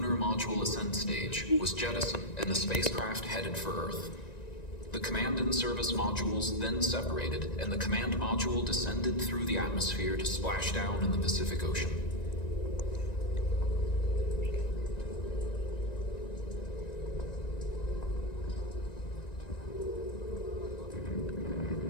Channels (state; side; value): late; right; 1.9 ms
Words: module ascent stage, was jettisoned and the spacecraft headed for Earth. The command and service modules then separated, and the command module descended through the atmosphere to splash down in the Pacific Ocean.